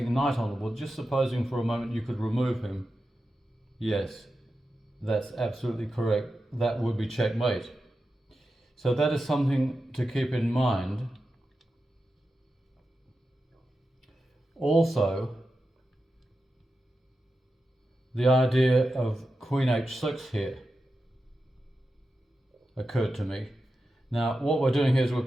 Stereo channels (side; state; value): both; normal; correlation 0.91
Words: knight on the board, just supposing for a moment you could remove him, yes, that's absolutely correct, that would be checkmate. So that is something to keep in mind. Also, the idea of Queen h6 here occurred to me. Now, what we're doing here is we're